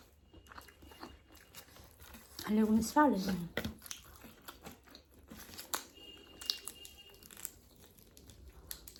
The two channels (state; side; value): identical; both; correlation 1.00